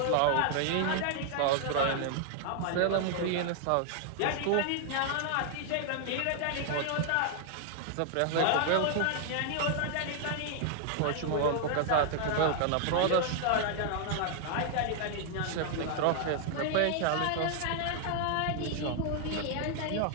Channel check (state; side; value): different; both; correlation 0.00